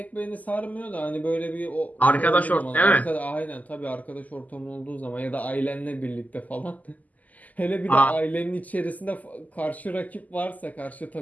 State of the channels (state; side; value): late; right; 0.078 ms